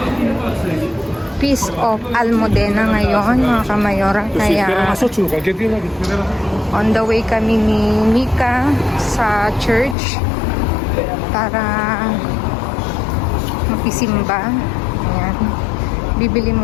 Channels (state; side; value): drops out; right; at 10.0 s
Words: Feast of Almudena ngayon, mga Kamayora. Kaya on the way kami ni Mika sa church para makisimba. Ayan. Bibili